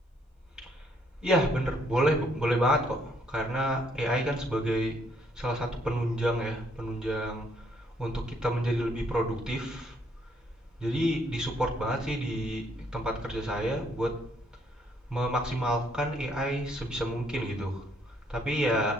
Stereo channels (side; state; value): both; normal; correlation 0.69